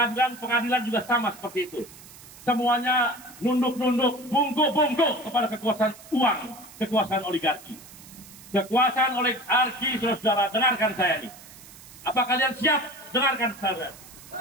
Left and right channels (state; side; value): noise; right; hiss, 19 dB below the sound